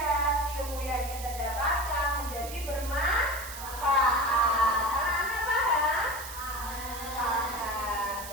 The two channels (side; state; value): right; noise; hiss, 11 dB below the sound